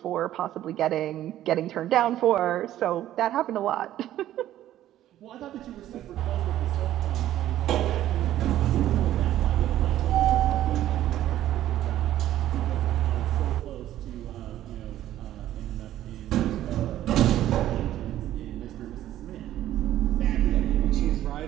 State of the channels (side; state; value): left; quieter; 13.0 dB